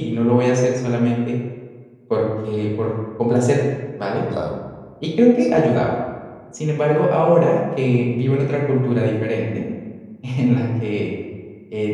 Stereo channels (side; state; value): both; identical; correlation 1.00